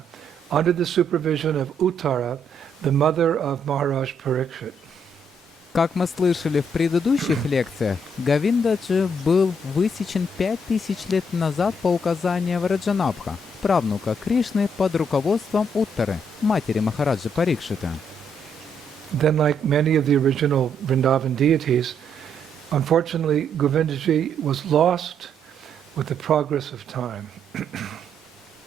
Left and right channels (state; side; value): normal; both; correlation 0.73